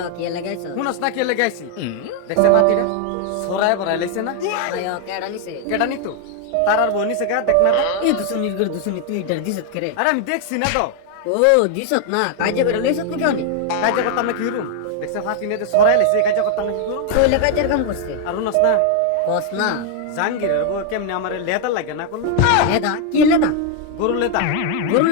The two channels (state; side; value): different; both; correlation 0.00